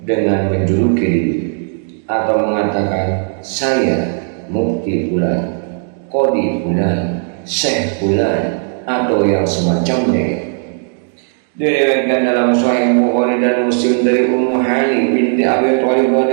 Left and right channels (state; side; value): silent; left; 57 dB below the other